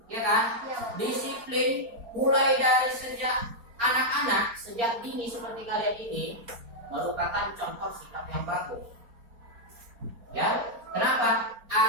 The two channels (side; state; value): left; late; 4.3 ms